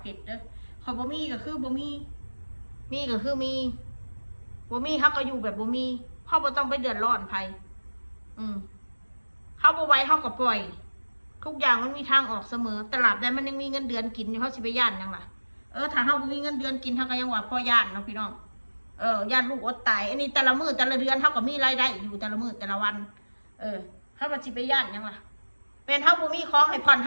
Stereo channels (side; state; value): both; inverted; correlation -1.00